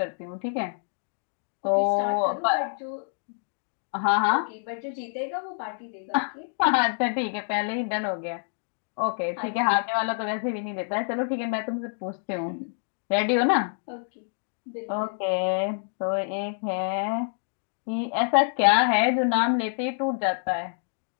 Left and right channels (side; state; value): right; silent; digital silence